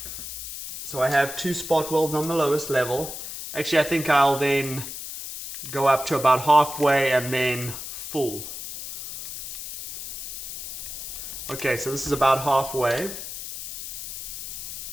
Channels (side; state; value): left; noise; hiss, 9 dB below the sound